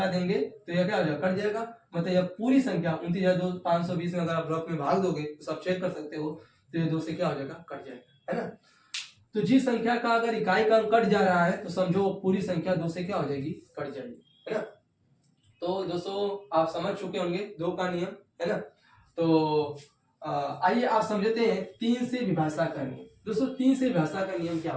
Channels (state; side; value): identical; both; correlation 1.00